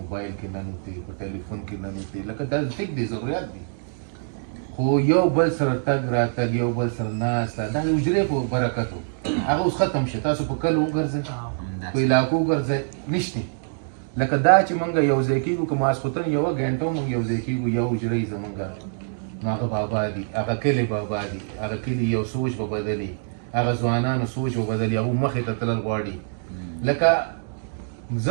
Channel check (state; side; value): silent; left; digital silence